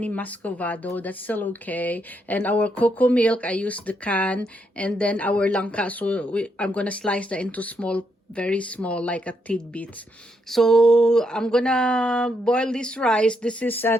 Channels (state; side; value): normal; both; correlation 0.78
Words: muscovado. That's still okay. And our cocoa milk, I used the can. And then our langka, so I'm gonna slice that into small, very small, like a tidbits. So I'm gonna boil this rice. This is